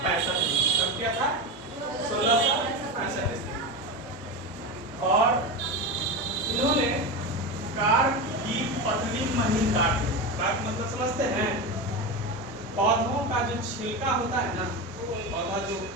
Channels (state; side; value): normal; both; correlation 0.20